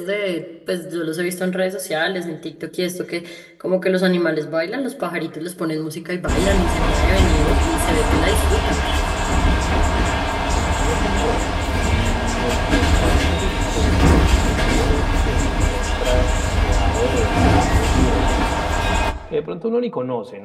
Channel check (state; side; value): identical; both; correlation 1.00